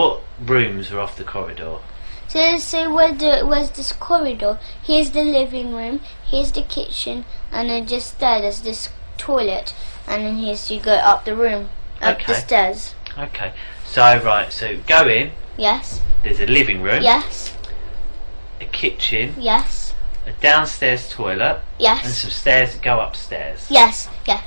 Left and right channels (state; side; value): inverted; both; correlation -1.00